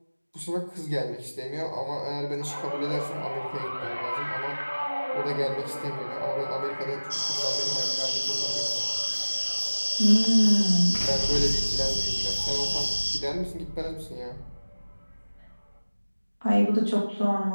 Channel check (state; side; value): inverted; both; correlation -1.00